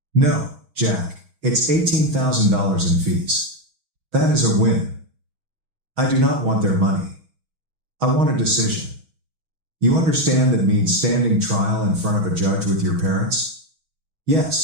No, Jack, it's $18,000 in fees. That is a win. I do not want their money. I want a decision. You understand that means standing trial in front of a judge with your parents?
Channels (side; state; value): left; late; 6.2 ms